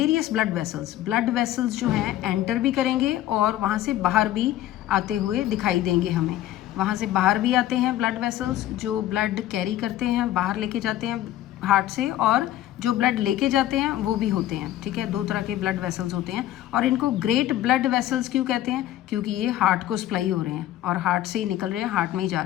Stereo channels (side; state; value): right; quieter; 13.6 dB